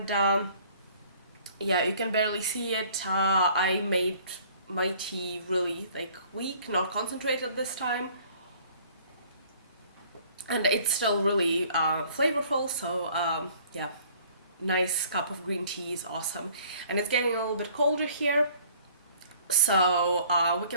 yeah, you can barely see it. I made my tea really weak, not concentrated this time, and it's still really flavorful. So yeah, nice cup of green tea is awesome, and it's getting a little bit colder here. So we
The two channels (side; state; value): both; inverted; correlation -0.55